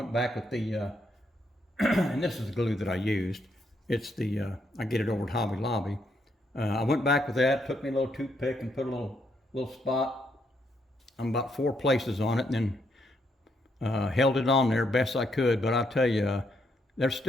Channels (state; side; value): normal; both; correlation 0.76